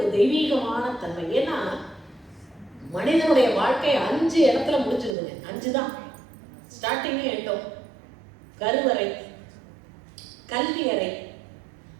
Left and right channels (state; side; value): drops out; left; at 5.2 s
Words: தெய்வீகமான தன்மை. ஏன்னா மனிதனுடைய வாழ்க்கை 5 இடத்துல முடிஞ்சிருதுங்க. 5 தான் ஸ்டார்டிங்கே எட்டும். கருவறை, கல்வி அறை,